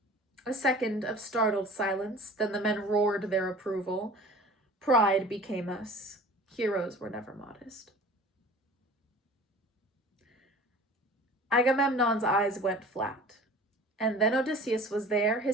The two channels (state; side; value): normal; both; correlation 0.43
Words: A second of startled silence, then the men roared their approval. Pride became us. Heroes were never modest. Agamemnon's eyes went flat. And then Odysseus was there,